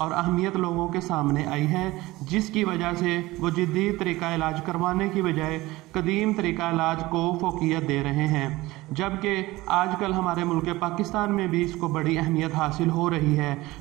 अहमियत लोगों के सामने आई है, जिसकी वजह से वो जदीद तरीका इलाज करवाने की बजाय कदीम तरीका इलाज को फोकियत दे रहे हैं। जबकि आजकल हमारे मुल्क पाकिस्तान में भी इसको बड़ी अहमियत हासिल हो रही है,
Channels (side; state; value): left; quieter; 19.3 dB